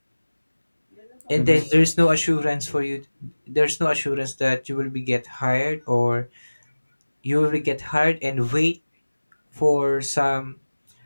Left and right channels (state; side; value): inverted; both; correlation -1.00